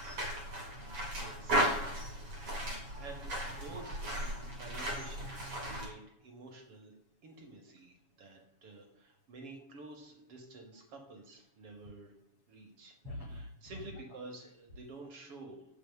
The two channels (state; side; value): late; left; 7.2 ms